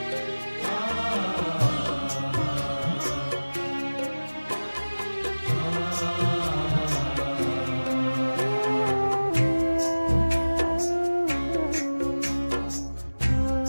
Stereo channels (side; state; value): both; inverted; correlation -1.00